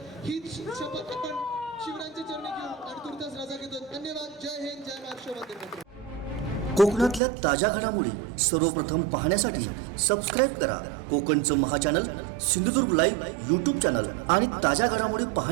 हीच शपथ आपण शिवरायांच्या चरणी घेऊ आणि तुर्तास रजा घेतो. धन्यवाद. जय हिंद, जय महाराष्ट्र, वंदे मातरम. कोकणातल्या ताज्या घडामोडी सर्वप्रथम पाहण्यासाठी सबस्क्राईब करा कोकणचं महाचॅनल सिंधुदुर्ग लाईव्ह यूट्यूब चॅनल आणि ताज्या घडामोडी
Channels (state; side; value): drops out; left; at 7.2 s